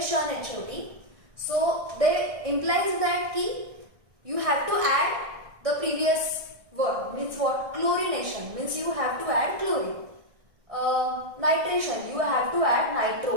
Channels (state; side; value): late; left; 1.6 ms